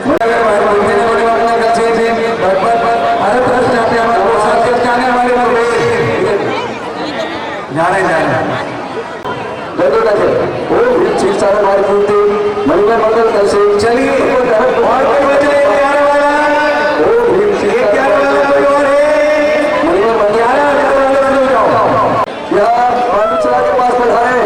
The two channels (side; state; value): both; identical; correlation 1.00